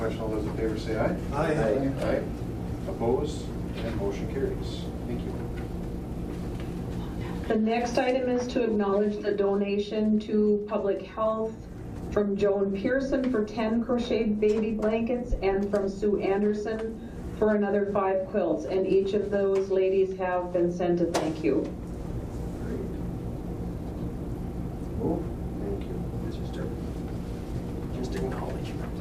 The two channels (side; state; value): both; identical; correlation 1.00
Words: All those in favor say aye. Aye. Aye. Opposed? And motion carries. Thank you. The next item is to acknowledge the donation to Public Health from Joan Pearson for 10 crocheted baby blankets and from Sue Anderson for another 5 quilts. And each of those ladies have been sent a thank you. Move. Thank you. It's just acknowledgement.